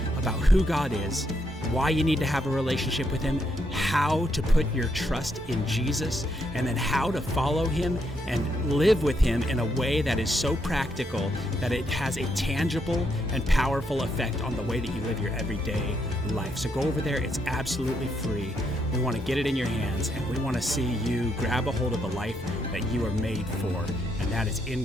about who God is, why you need to have a relationship with Him, how to put your trust in Jesus, and then how to follow Him and live with Him in a way that is so practical that it has a tangible and powerful effect on the way that you live your everyday life. So go over there. It's absolutely free. We want to get it in your hands, and we want to see you grab a hold of the life that you are made for, and that is in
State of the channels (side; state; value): both; normal; correlation 0.77